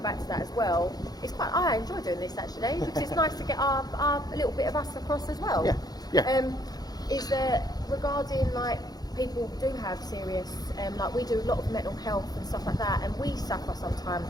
to that as well. I enjoy doing this actually because it's nice to get a little bit of us across as well. Yeah. Is that regarding like people do have serious, like we do a lot of mental health and stuff like that, and we suffer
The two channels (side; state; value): right; late; 0.19 ms